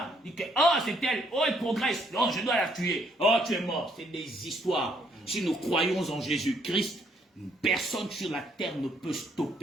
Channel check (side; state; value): both; normal; correlation 0.69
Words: Il dit, oh c'est elle, oh il progresse, oh je dois la tuer, oh tu es mort. C'est des histoires. Si nous croyons en Jésus-Christ, personne sur la terre ne peut